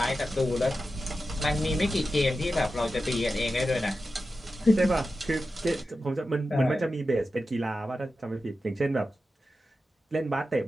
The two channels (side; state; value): both; normal; correlation 0.92